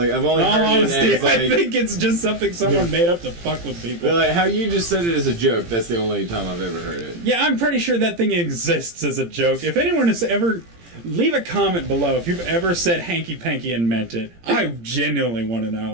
I've only In all heard honesty, it as, like, I think it's just something someone made up to fuck with people. But, like, how you just said it as a joke, that's the only time I've ever heard it. Yeah, I'm pretty sure that thing exists as a joke. If anyone has ever... Leave a comment below if you've ever said hanky-panky and meant it. I genuinely want to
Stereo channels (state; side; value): late; left; 17 ms